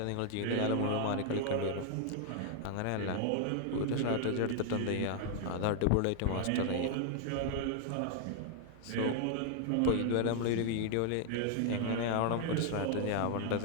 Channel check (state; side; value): different; both; correlation 0.00